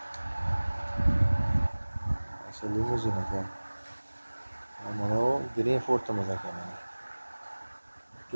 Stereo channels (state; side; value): inverted; both; correlation -1.00